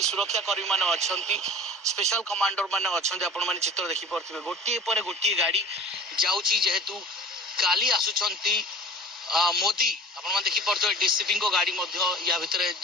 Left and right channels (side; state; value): both; normal; correlation 0.41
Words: सुरक्षा कर्मी माने अछंती स्पेशल कमांडर माने अछंती। आपण माने चित्र देखि पारुथिबे गोटे पर गोटे गाड़ी जाउची जेहेतु काली आसुचंती मोदी आपण देखी पारे डीसीपी को गाड़ी या भितर